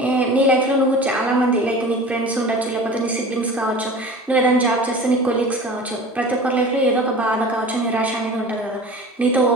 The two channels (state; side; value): normal; both; correlation 0.38